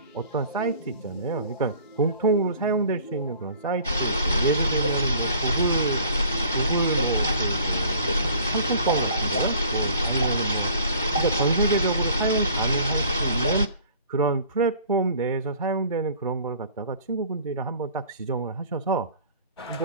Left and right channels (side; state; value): both; inverted; correlation -0.51